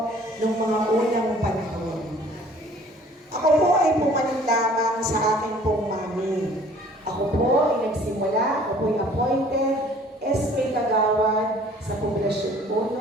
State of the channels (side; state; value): both; normal; correlation 0.53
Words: nung mga unang panahon. Ako po ay pumanin lamang sa aking pong mami. Ako po ay nagsimula, ako po ay appointed SK Kagawad sa Poblasyon